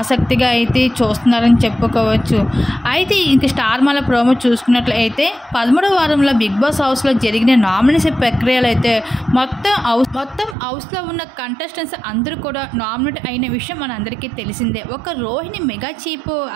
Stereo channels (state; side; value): drops out; left; at 10.6 s